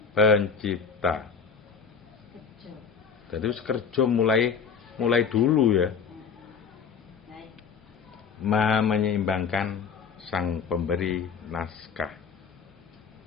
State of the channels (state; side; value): quieter; right; 6.2 dB